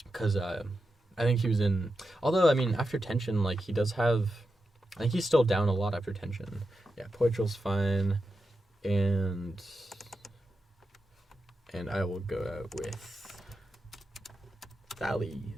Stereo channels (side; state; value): both; normal; correlation 0.89